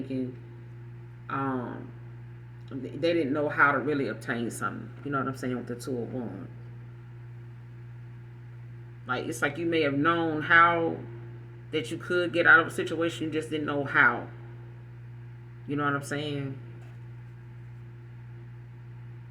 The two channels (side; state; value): both; identical; correlation 1.00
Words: um, they didn't know how to really obtain something. You know what I'm saying with the Two of Wands. Like it's like you may have known how that you could get out of a situation, you just didn't know how. You know what I'm saying?